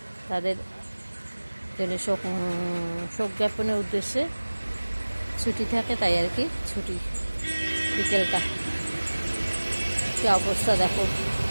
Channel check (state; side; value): inverted; both; correlation -1.00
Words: তাদের জন্য শোক জ্ঞাপনের উদ্দেশ্যে ছুটি থাকে, তাই আর কি ছুটি বিকেলটা। কী অবস্থা দেখো,